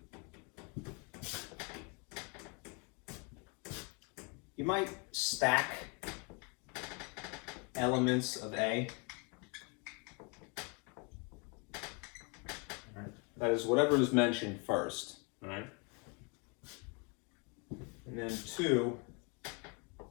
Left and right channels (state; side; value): quieter; right; 32.9 dB